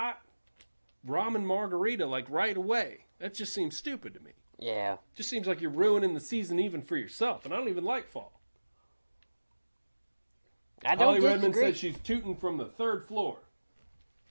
ramen margarita like right away. That just seems stupid to me. Yeah. Just seems like you're ruining the season even for yourself, and I don't even like fall. Holly Redmond said she's tooting from the 3rd floor.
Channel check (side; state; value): both; inverted; correlation -1.00